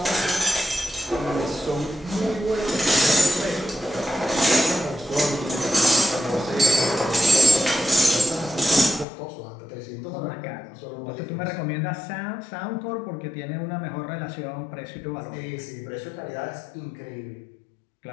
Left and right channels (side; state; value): right; drops out; at 9.1 s